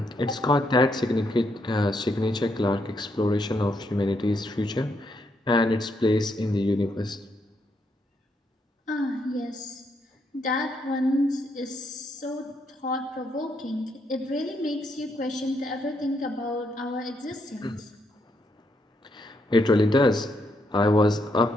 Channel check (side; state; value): both; normal; correlation 0.77